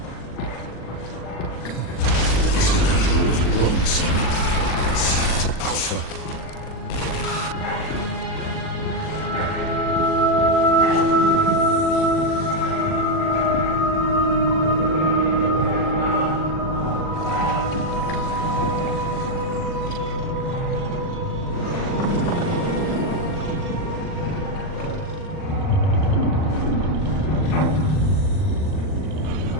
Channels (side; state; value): right; late; 40 ms